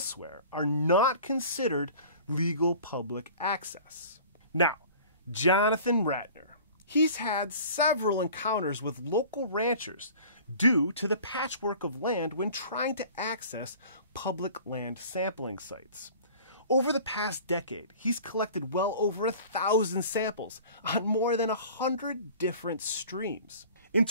are not considered legal public access. Now, Jonathan Ratner, he's had several encounters with local ranchers due to the patchwork of land when trying to access public land sampling sites. Over the past decade, he's collected well over 1,000 samples on more than 100 different streams. In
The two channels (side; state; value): both; inverted; correlation -0.44